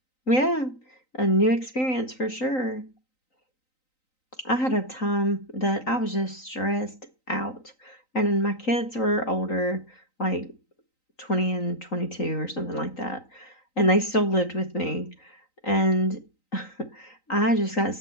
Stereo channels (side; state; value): right; late; 3.9 ms